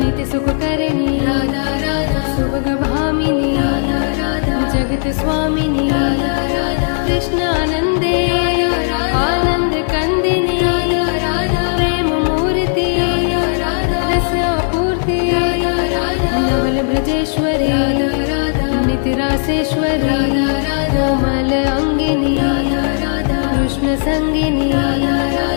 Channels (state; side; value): silent; right; digital silence